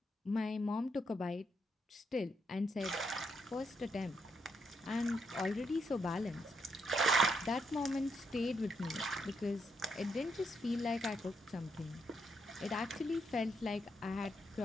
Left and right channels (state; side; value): normal; both; correlation 0.78